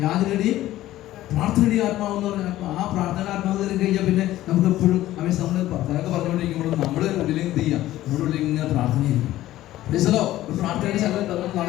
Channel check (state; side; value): quieter; right; 14.8 dB